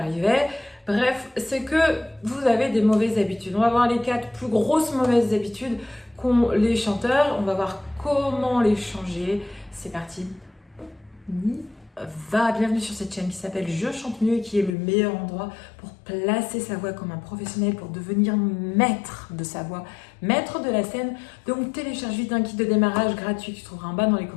Bref, c'est que vous avez des mauvaises habitudes. On va voir les 4 plus grosses mauvaises habitudes qu'ont les chanteurs. On va voir comment les changer. C'est parti. Bienvenue sur cette chaîne qui s'appelle Je chante mieux et qui est le meilleur endroit pour placer sa voix comme un professionnel, pour devenir maître de sa voix, maître de la scène. Donc télécharge vite un kit de démarrage gratuit que tu trouveras en bas dans les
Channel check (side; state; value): right; drops out; at 14.8 s